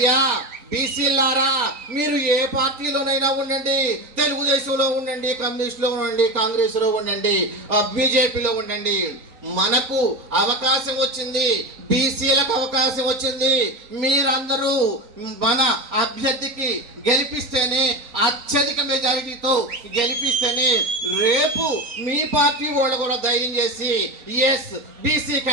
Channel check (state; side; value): late; left; 3.9 ms